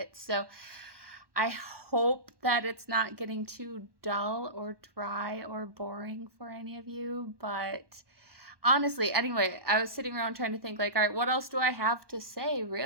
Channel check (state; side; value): late; left; 1.1 ms